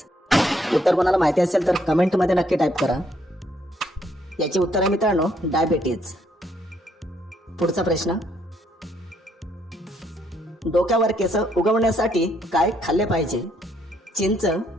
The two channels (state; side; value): normal; both; correlation 0.70